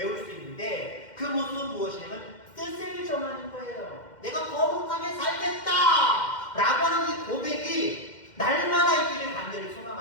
수 있는데 그 모습은 무엇이냐면 뜻을 정하는 거예요. 내가 거룩하게 살겠다 라고 하는 이 고백이 날마다 있기를 간절히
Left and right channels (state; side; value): late; right; 2.1 ms